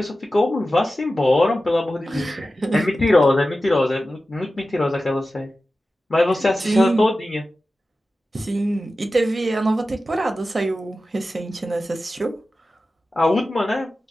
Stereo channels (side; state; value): both; normal; correlation 0.94